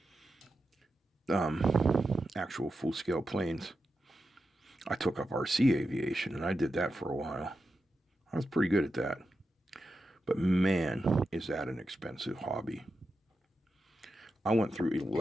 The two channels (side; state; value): both; normal; correlation 0.89